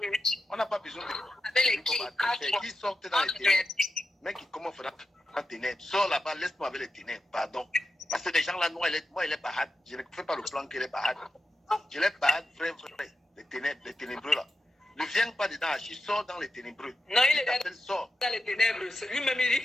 On n'a pas besoin de lui. Qui sortent dans les ténèbres. Mec, comment faire dans les ténèbres? Sors là-bas, laisse-moi avec les ténèbres, pardon. Parce que les gens là, moi, il est barade. Je ne fais pas le plan qu'il est barade. Je l'ai barade, vrai. Les ténébreux là. Ne viens pas dedans, il sort dans les ténébreux. Non, il est dans les ténèbres. Lui-même, il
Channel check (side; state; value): both; normal; correlation 0.90